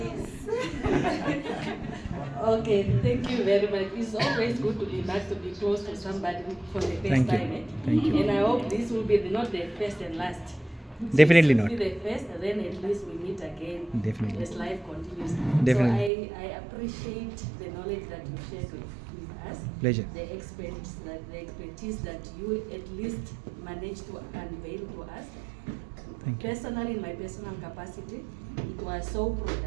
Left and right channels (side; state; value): left; drops out; at 16.1 s